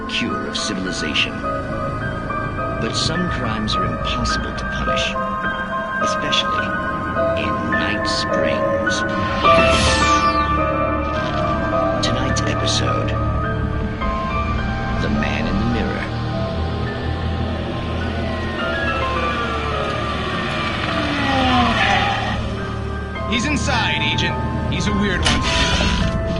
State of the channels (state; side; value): identical; both; correlation 1.00